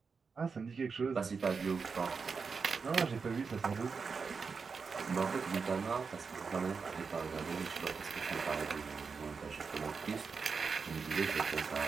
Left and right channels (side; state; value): left; quieter; 5.2 dB